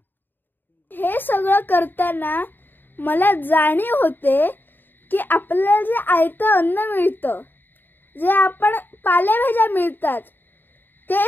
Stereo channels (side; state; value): right; late; 0.093 ms